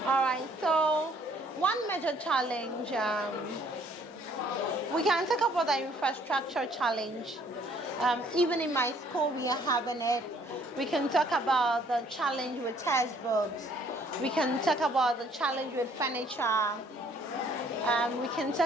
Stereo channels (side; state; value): both; normal; correlation 0.62